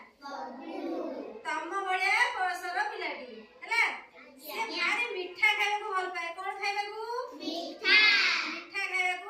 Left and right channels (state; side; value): identical; both; correlation 1.00